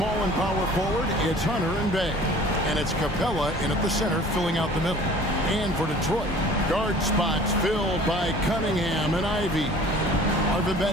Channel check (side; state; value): both; normal; correlation 0.48